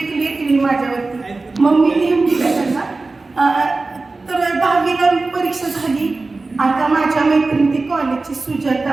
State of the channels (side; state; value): left; quieter; 3.6 dB